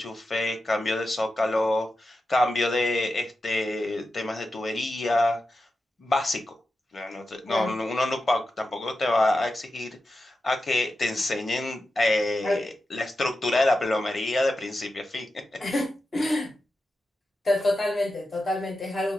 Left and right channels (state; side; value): normal; both; correlation 0.91